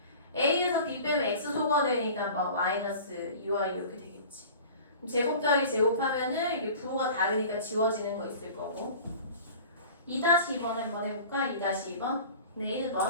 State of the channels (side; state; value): both; inverted; correlation -0.41